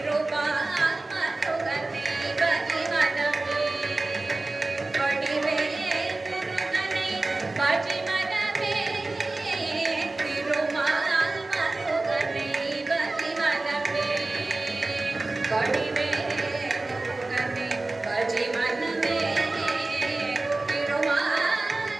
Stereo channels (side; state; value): left; quieter; 3.1 dB